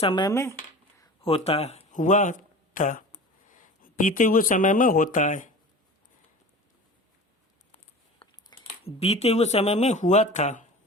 में होता है, हुआ था, बीते हुए समय में होता है, बीते हुए समय में हुआ था।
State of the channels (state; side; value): normal; both; correlation 0.36